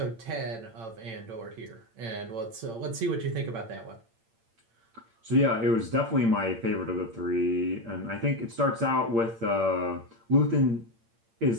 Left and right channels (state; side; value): late; left; 8.8 ms